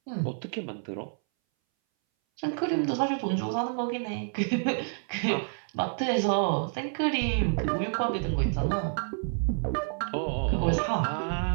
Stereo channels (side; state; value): left; silent; 59 dB below the other